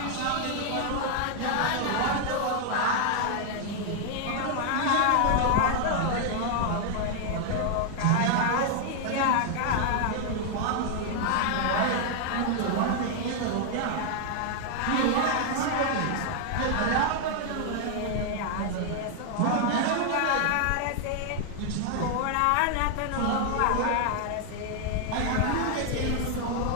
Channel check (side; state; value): both; different; correlation 0.00